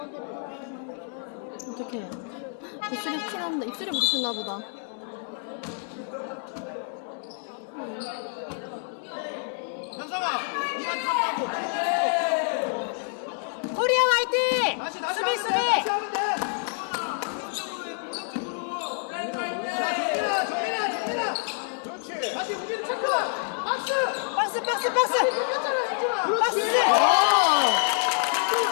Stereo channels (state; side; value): silent; right; 60 dB below the other